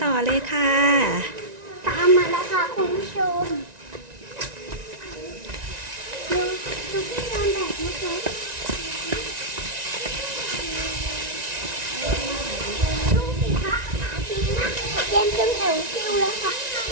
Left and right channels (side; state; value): left; late; 1.9 ms